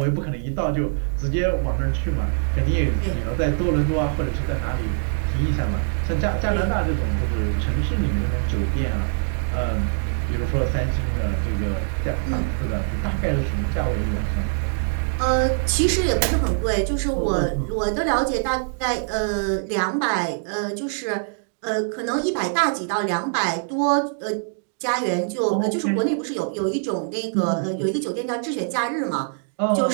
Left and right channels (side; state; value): left; silent; digital silence